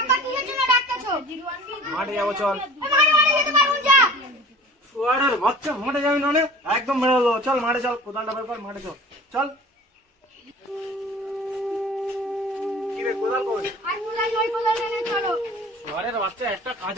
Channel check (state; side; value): normal; both; correlation 0.44